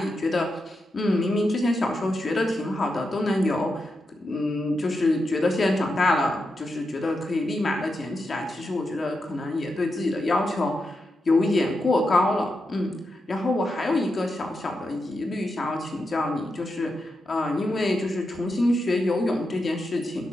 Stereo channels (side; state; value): both; normal; correlation 0.87